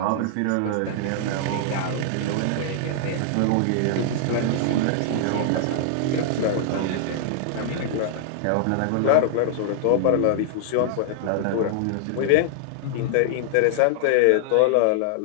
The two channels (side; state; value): both; different; correlation -0.01